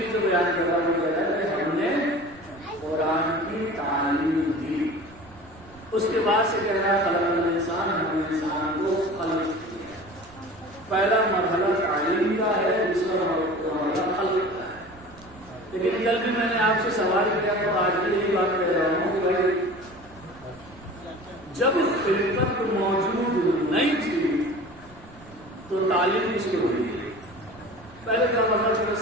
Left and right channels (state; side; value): noise; right; rumble, 23 dB below the sound